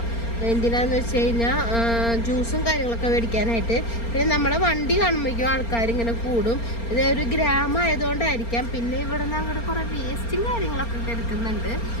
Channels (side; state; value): right; late; 4.3 ms